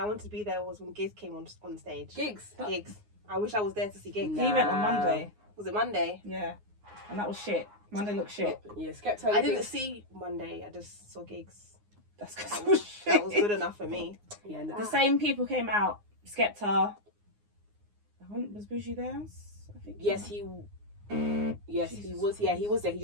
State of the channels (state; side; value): late; left; 9.6 ms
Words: wanted to be there, was when Gigs came on stage. gigs. Gigs. I wish I was there to see Gigs. Nah. He went on Monday. Was it Monday? Yeah, and that was shit. Monday looked shit. Yeah, Skepta. I didn't see Monday. I just saw Gigs. That's because That it was was, shit. that was good enough for me. Yeah, nah. The same people came out. Skepta. Was Bougie there? I think. Yes, he was. Yeah, he was there. He